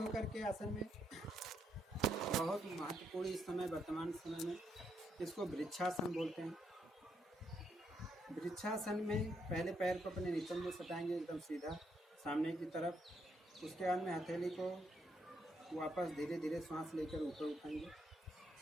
के आसन में बहुत महत्वपूर्ण इस समय वर्तमान समय में इसको वृक्षासन बोलते हैं। वृक्षासन में पहले पैर को अपने निचल में सटाएंगे एकदम सीधा सामने की तरफ। उसके बाद में हथेली को वापस धीरे धीरे सांस लेकर ऊपर उठाएंगे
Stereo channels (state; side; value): normal; both; correlation 0.76